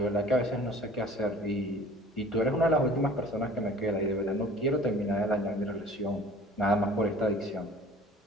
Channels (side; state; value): both; normal; correlation 0.47